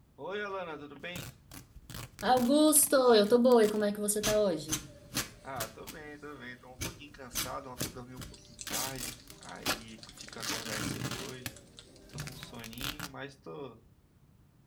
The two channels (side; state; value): both; identical; correlation 1.00